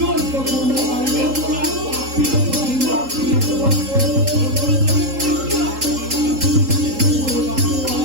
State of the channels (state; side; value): late; left; 3.8 ms